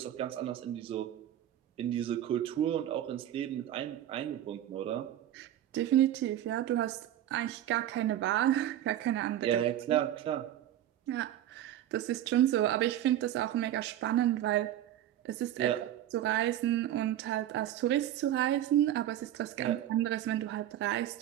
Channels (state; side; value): quieter; left; 12.2 dB